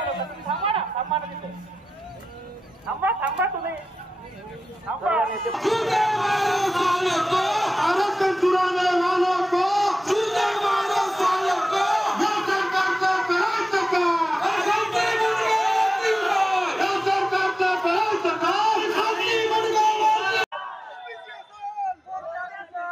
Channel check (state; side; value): normal; both; correlation 0.93